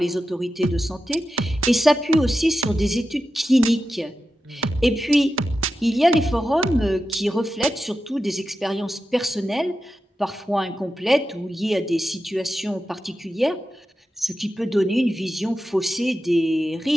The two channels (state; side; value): normal; both; correlation 0.91